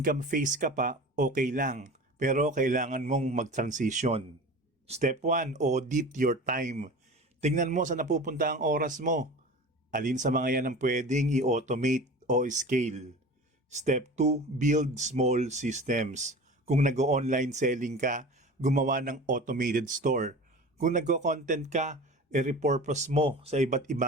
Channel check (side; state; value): both; normal; correlation 0.36